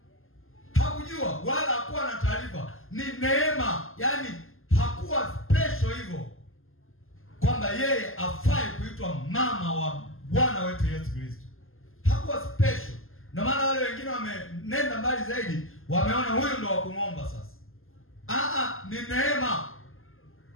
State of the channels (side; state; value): right; late; 0.60 ms